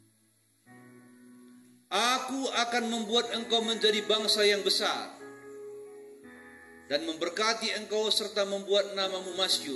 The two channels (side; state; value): both; identical; correlation 1.00